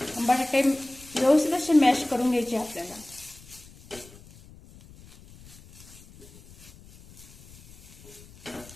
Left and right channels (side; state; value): left; noise; rumble, 22 dB below the sound